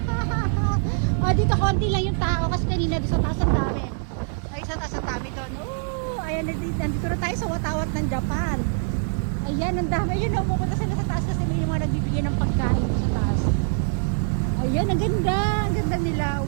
Oh, dito konti lang yung tao kasi kanina doon sa taas ang dami. Ay, sa taas ang dami doon. Oh, ayan, nandito na tayo sa watawat ng Japan. Ayan, ang dami. Ayun, pupunta sila sa taas kasi yung mga nagbibigay ng pagkain sa taas. Ayan, ang ganda. Ang ganda nila.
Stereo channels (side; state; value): left; silent; digital silence